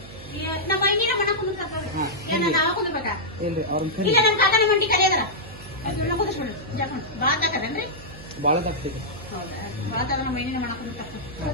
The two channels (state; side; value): noise; right; hum, 16 dB below the sound